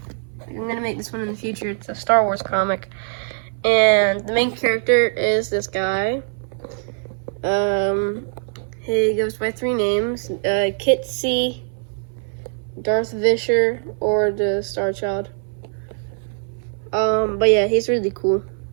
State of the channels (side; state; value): left; silent; 59 dB below the other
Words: I'm going to make this one in the future. It's a Star Wars comic. And the main character is this guy. He goes by 3 names, Kit C, Darth Visher, or the Star Child. But yeah, he's really cool,